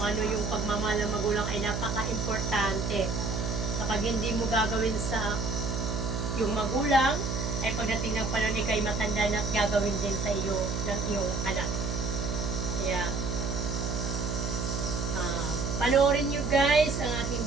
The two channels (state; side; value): noise; right; hum, 2 dB below the sound